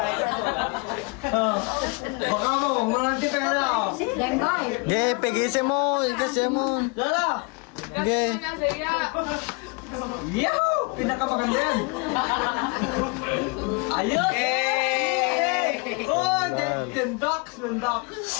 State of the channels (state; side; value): quieter; right; 30.5 dB